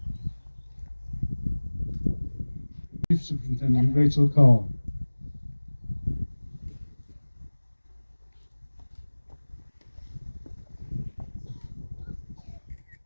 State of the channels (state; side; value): inverted; both; correlation -1.00